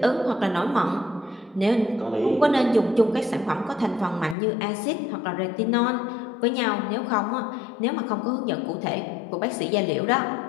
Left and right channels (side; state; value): right; drops out; at 4.4 s